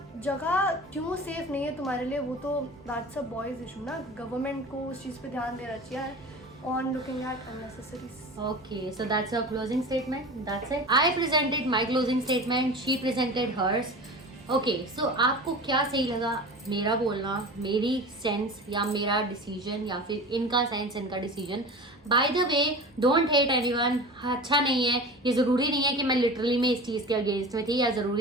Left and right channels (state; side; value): normal; both; correlation 0.34